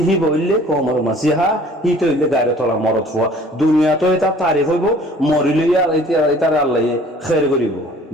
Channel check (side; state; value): both; normal; correlation 0.52